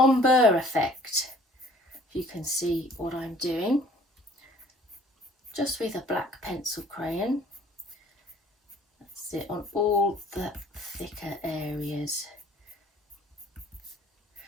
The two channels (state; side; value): normal; both; correlation 0.54